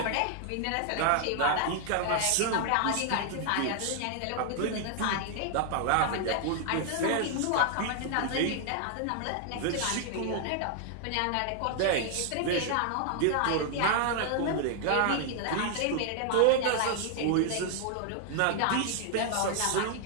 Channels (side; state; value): both; different; correlation 0.00